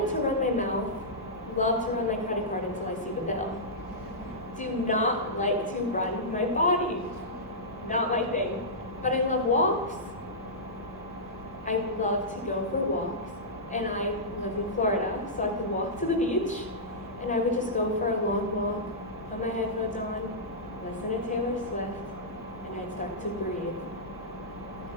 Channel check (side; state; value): both; normal; correlation -0.14